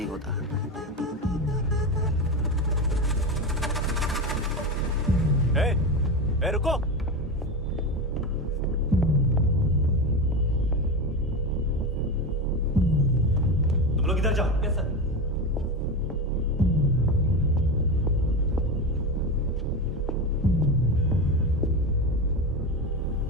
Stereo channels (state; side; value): normal; both; correlation 0.19